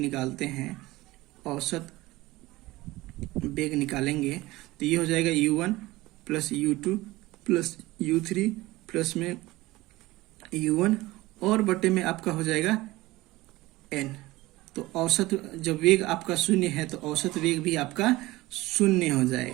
हैं, औसत वेग निकालेंगे तो ये हो जाएगा U1 plus U2 plus U3 plus में U1 और बटे में आपका हो जाएगा N। तो औसत जब वेग आपका शून्य है तो औसत वेग भी आपका शून्य हो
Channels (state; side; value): quieter; left; 19.2 dB